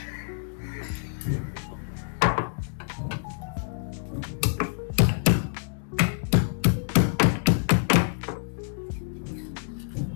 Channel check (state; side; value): silent; right; digital silence